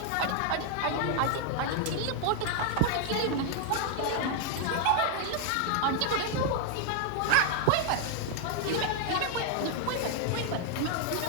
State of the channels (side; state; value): both; different; correlation 0.00